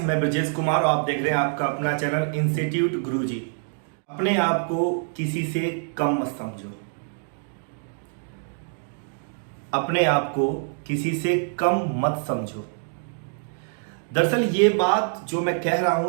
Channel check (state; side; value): silent; left; digital silence